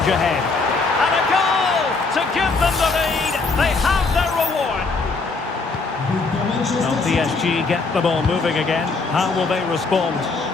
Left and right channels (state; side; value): quieter; right; 4.0 dB